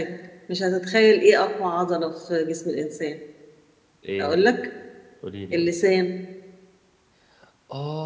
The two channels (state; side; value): identical; both; correlation 1.00